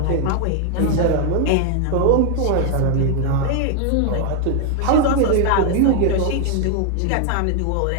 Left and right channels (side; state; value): both; different; correlation 0.01